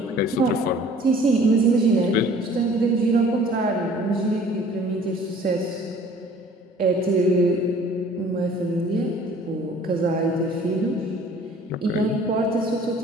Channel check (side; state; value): both; normal; correlation 0.52